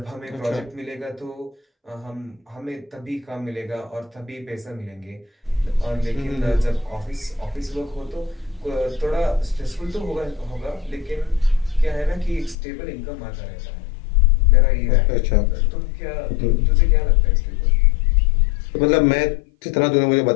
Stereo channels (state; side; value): drops out; right; at 12.6 s